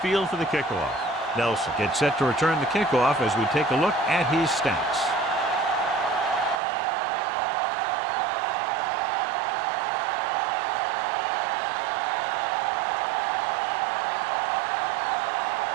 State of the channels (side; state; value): left; drops out; at 6.6 s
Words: for the kickoff. Nelson gets set to return the kickoff as we take a look at his stats.